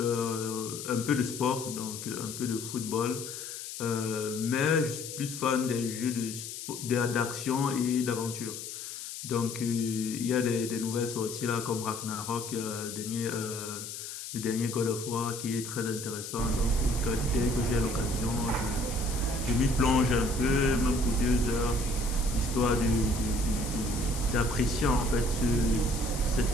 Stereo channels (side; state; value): left; noise; hiss, 9 dB below the sound